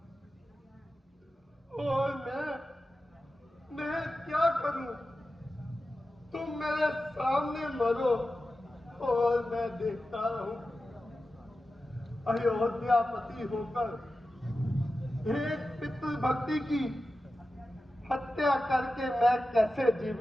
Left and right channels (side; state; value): both; normal; correlation 0.93